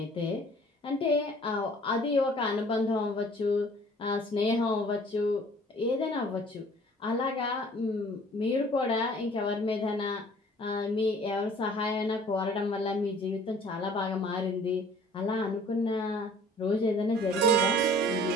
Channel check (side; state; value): both; normal; correlation 0.52